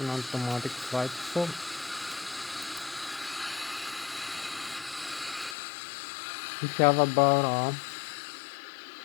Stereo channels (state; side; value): drops out; right; at 5.6 s